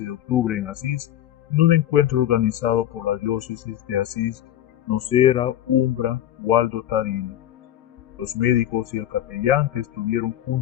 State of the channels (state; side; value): quieter; right; 12.0 dB